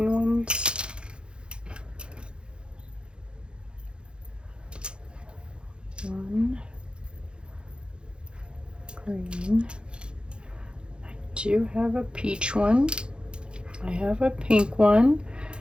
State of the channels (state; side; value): late; left; 0.053 ms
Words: ones. One. Green. I do have a peach one. I have a pink one.